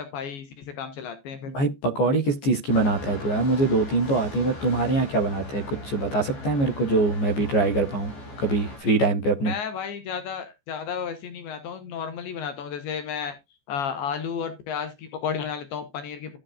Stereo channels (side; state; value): right; late; 14 ms